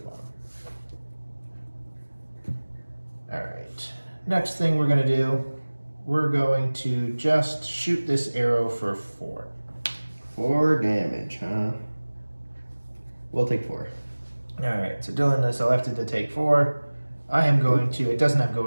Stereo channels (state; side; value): inverted; both; correlation -1.00